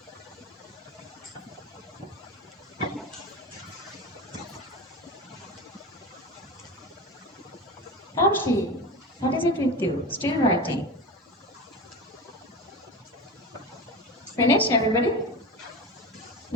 Asha, what is it with you? Still writing. Finish, everybody?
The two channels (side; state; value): both; normal; correlation 0.26